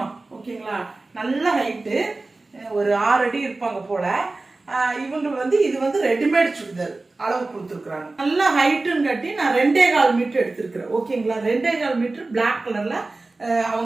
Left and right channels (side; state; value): left; quieter; 3.3 dB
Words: ஓகேங்களா. நல்ல ஹைட்டு, ஒரு 6 அடி இருப்பாங்க போல. இவங்க வந்து இது வந்து ரெடிமேட் சுடிதார் அளவு கொடுத்துருக்காங்க. நல்ல ஹைட்டுன்னு கட்டி நான் 2.25 மீட்டர் எடுத்திருக்கிறேன். ஓகேங்களா. 2.25 மீட்டர் பிளாக் கலர்ல